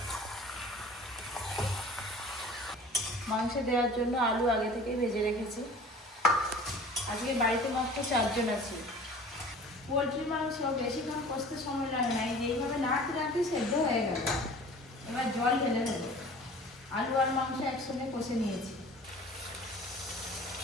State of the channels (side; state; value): both; normal; correlation 0.45